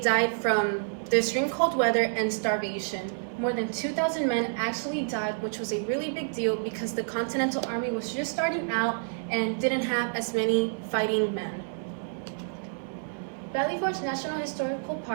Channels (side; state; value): left; silent; 59 dB below the other